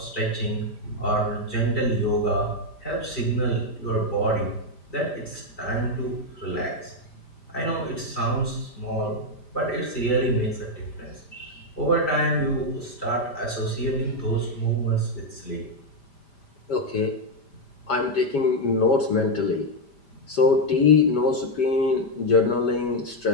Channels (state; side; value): late; right; 5.0 ms